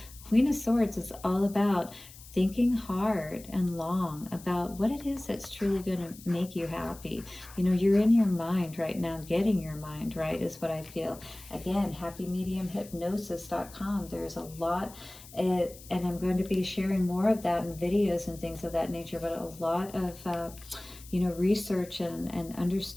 Queen of Swords is all about thinking hard and long about what it is that's truly going to make you happy. You know, you're in your mind right now, getting your mind right is what I feel. Again, happymediumhypnosis.com. There's a lot, and I'm going to be sharing more of that in videos and things of that nature, but a lot of, you know, research and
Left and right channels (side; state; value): left; noise; hiss, 19 dB below the sound